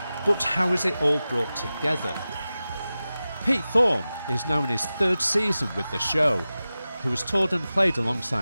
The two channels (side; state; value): both; inverted; correlation -0.95